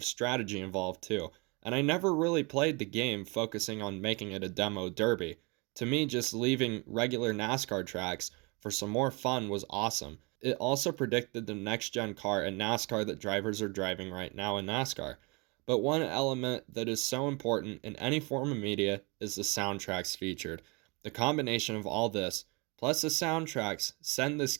strategy involved too. And I never really played the game focusing on making it a demo derby. To me, just leaving regular NASCAR tracks for some more fun was awesome. It also predicted the next-gen car in NASCAR that drivers are driving right now in NASCAR. But one element that is so important in any form of media is the soundtracks featured. The combination of all this, plus the soundtracks, send this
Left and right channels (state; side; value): quieter; left; 28.9 dB